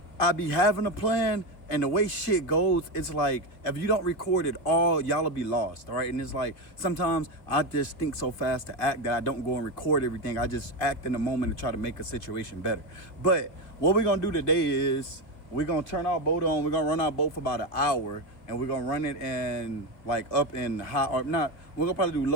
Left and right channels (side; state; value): right; late; 2.7 ms